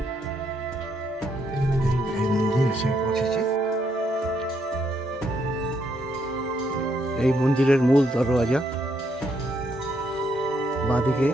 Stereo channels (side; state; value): both; normal; correlation 0.75